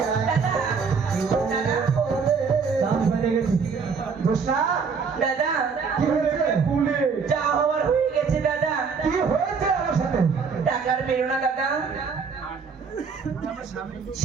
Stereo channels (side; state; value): left; quieter; 5.5 dB